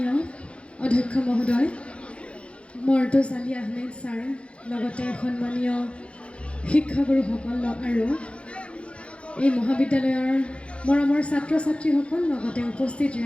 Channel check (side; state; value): right; late; 0.060 ms